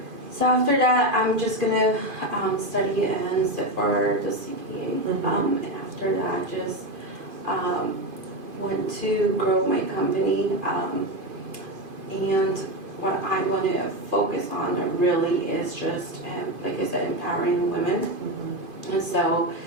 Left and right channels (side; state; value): left; late; 2.5 ms